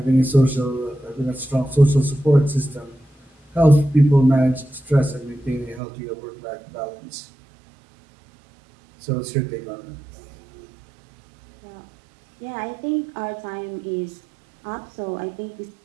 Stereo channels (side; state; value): left; drops out; at 5.8 s